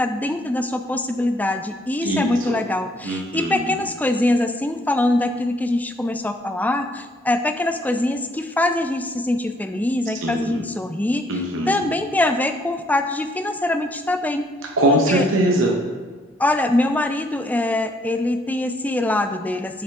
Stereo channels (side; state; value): both; normal; correlation 0.67